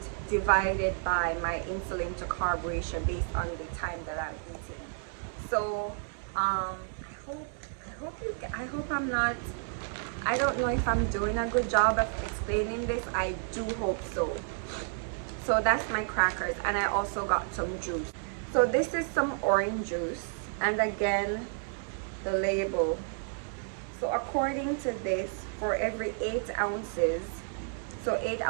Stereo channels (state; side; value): silent; left; 57 dB below the other